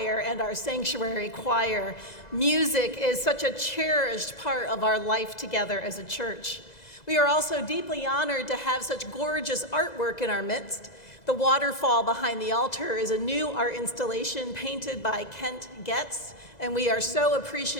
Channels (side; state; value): right; late; 2.0 ms